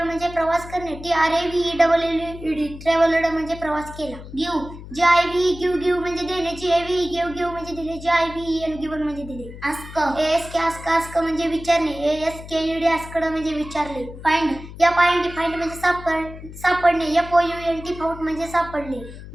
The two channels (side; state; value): left; noise; hum, 14 dB below the sound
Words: म्हणजे प्रवास करणे, T R A V E double L E D travelled म्हणजे प्रवास केला. Give, G I V give give म्हणजे देणे, G A V give give म्हणजे दिले, G I V N given म्हणजे दिले. Ask, A S K ask ask म्हणजे विचारणे, A S K E D asked म्हणजे विचारले. Find, F I N D find म्हणजे सापडणे, F O U N T found म्हणजे सापडले.